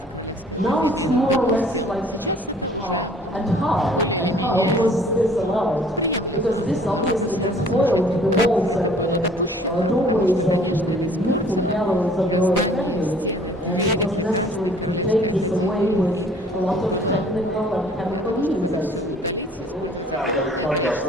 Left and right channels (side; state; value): both; normal; correlation 0.55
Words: Now it's more or less like, and how was this allowed? Because this obviously had spoiled the walls and the doorways of the beautiful galleries of the Royal Academy, and it was necessary to take this away with a lot of technical and chemical means, I see. Yeah, but it's not just